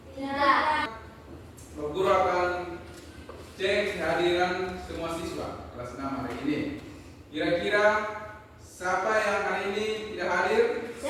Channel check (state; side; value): identical; both; correlation 1.00